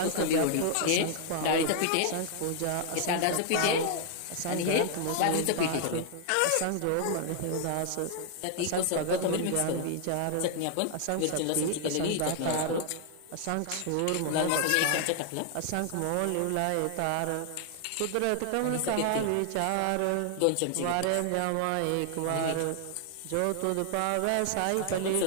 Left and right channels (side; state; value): both; different; correlation 0.00